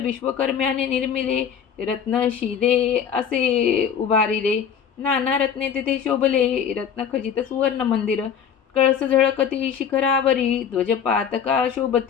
विश्वकर्म्याने निर्मिले रत्नशिले असे उभारिले. नाना रत्ने तेथे शोभले रत्नखचित सुवर्ण मंदिर. कळस झळकती शिखरावरी ध्वजपातका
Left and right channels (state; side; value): quieter; right; 7.7 dB